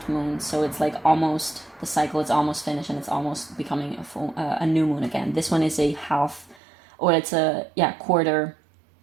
moon, so it's like almost, the cycle is almost finished and it's almost becoming a new moon again. This one is a half, or it's a quarter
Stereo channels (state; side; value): drops out; left; at 6.6 s